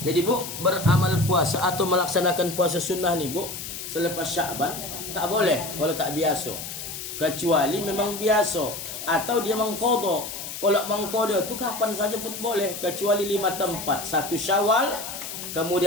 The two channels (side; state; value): left; noise; hiss, 8 dB below the sound